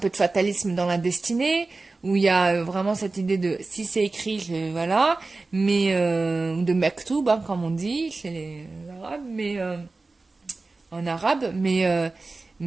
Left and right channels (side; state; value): left; quieter; 3.5 dB